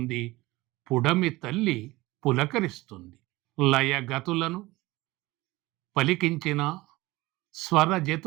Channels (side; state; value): left; quieter; 20.0 dB